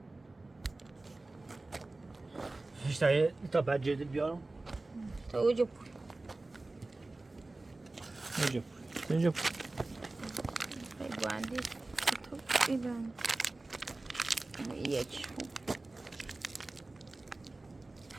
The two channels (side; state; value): left; quieter; 3.1 dB